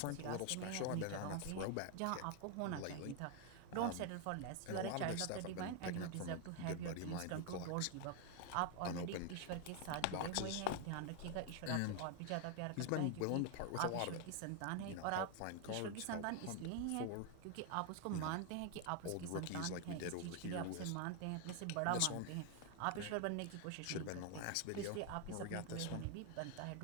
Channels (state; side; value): different; both; correlation 0.01